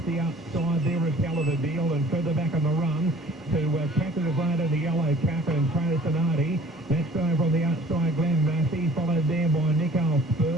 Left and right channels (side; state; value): both; normal; correlation 0.51